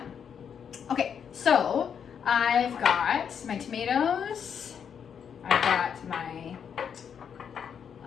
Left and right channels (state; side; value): quieter; right; 7.6 dB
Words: Okay, so I've got my tomatoes, I've got my